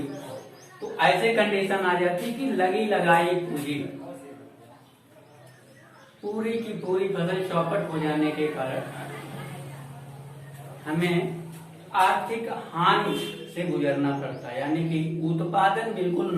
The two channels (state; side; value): identical; both; correlation 1.00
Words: तो ऐसे कंडीशन आ जाती कि लगी लगाई पूरी की पूरी फसल चौपट हो जाने के कारण हमें आर्थिक हानि से गुजरना पड़ता है, यानी कि उत्पादन बिल्कुल